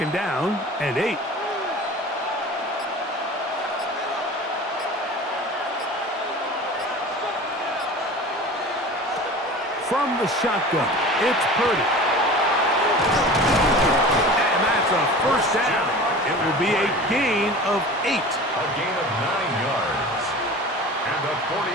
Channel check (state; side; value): normal; both; correlation 0.38